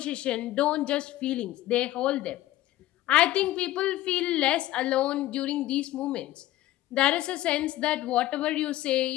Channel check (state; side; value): quieter; right; 15.4 dB